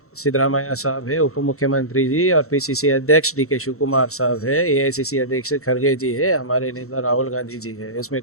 सिद्धरामैया साहब है, उप मुख्यमंत्री जी और पीसीसी अध्यक्ष डीके शिव कुमार साहब है, एआईसीसी अध्यक्ष खड़गे जी है, हमारे नेता राहुल गांधी जी है। इसमें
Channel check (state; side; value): late; right; 0.63 ms